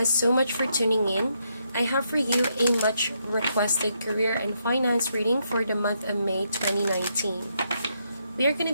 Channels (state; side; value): inverted; both; correlation -0.78